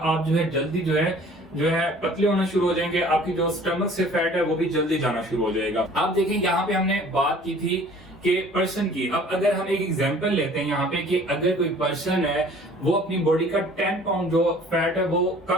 जो है जल्दी जो है पतले होना शुरू हो जाएंगे, आपकी जो स्टमक से फैट है वो भी जल्दी जाना शुरू हो जाएगा। आप देखें, यहाँ पे हमने बात की थी कि पर्सन की। अब अगर हम एक एग्जांपल लेते हैं यहाँ पे कि अगर कोई पर्सन है वो अपनी बॉडी का 10 पाउंड जो फैट है वो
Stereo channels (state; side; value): normal; both; correlation 0.51